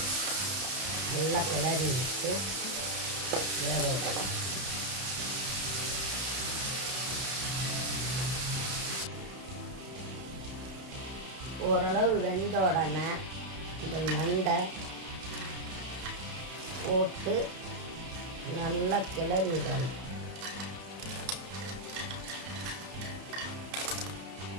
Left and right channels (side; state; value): left; late; 31 ms